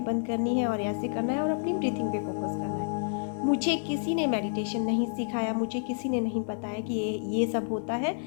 बंद करनी है और ऐसे करना है और अपनी ब्रीथिंग पे फोकस करना है। मुझे किसी ने मेडिटेशन नहीं सिखाया, मुझे किसी ने नहीं बताया कि ये सब होता है।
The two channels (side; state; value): right; silent; digital silence